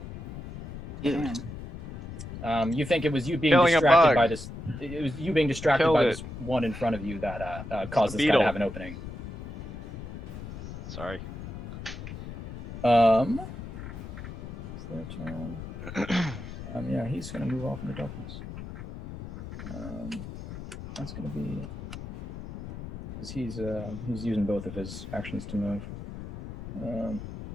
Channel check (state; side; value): noise; left; rumble, 10 dB below the sound